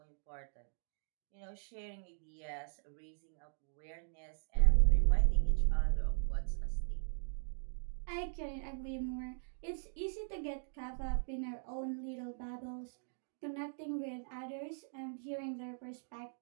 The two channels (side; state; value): left; silent; digital silence